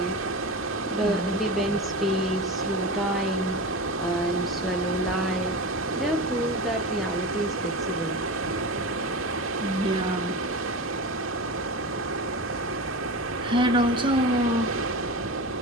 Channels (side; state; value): both; normal; correlation 0.26